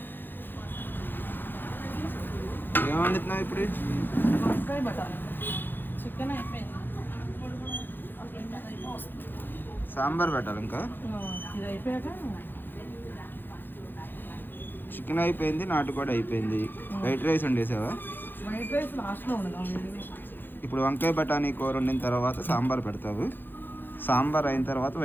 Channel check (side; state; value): right; late; 0.096 ms